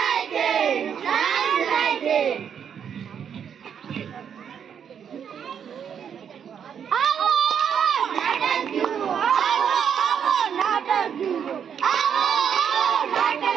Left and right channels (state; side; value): quieter; left; 7.9 dB